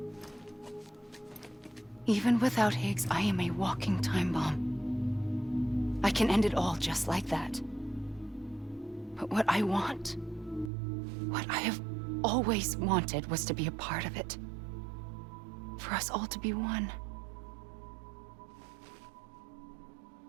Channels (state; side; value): drops out; left; at 10.7 s